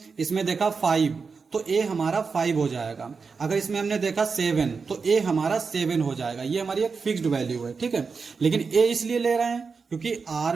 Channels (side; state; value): left; quieter; 5.0 dB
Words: इसमें देखा 5 तो a हमारा 5 हो जाएगा। अगर इसमें हमने देखा 7 तो a हमारा 7 हो जाएगा। ये हमारी एक फिक्स्ड वैल्यू है। ठीक है, लेकिन a इसलिए ले रहे हैं क्योंकि r